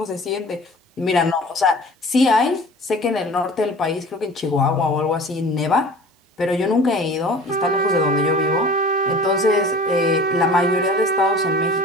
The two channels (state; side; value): normal; both; correlation 0.43